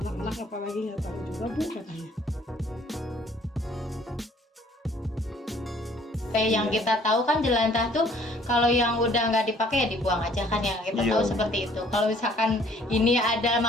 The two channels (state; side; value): normal; both; correlation 0.58